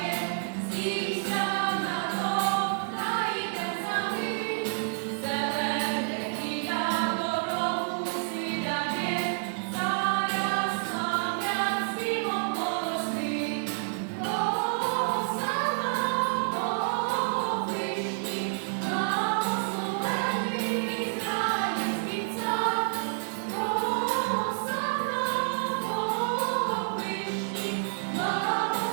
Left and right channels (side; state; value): left; silent; 59 dB below the other